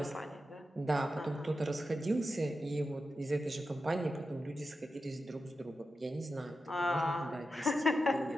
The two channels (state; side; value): normal; both; correlation 0.90